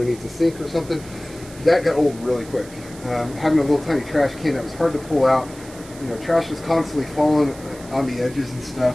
the sink or something. That got old really quick. Having a little tiny trash can that was hard to pull out. You know, trash was constantly falling on the edges and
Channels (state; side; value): noise; right; hiss, 19 dB below the sound